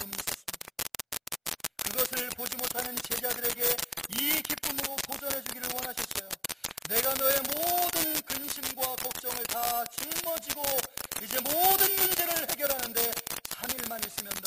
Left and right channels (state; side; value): identical; both; correlation 1.00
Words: 있었습니다. 그것을 보지 못하는 제자들에게 이 기쁨으로 도전해 주기를 원하셨어요. 내가 너의 모든 근심과 걱정을 다 짊어지고 이제 모든 문제를 해결하는데 3일만 있으면